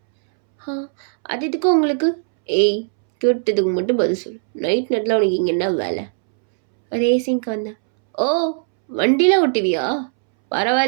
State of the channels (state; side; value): silent; left; 67 dB below the other